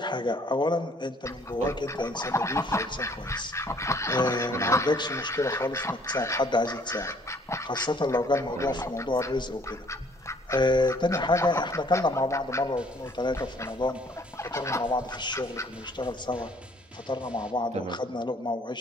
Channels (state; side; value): normal; both; correlation 0.60